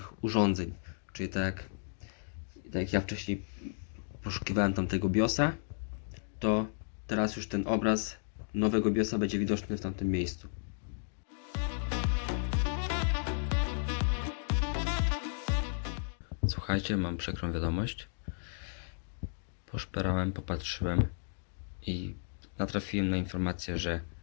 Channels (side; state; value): right; silent; digital silence